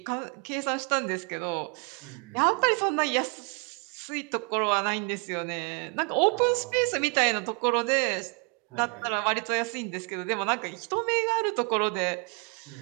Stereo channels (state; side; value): quieter; left; 33.8 dB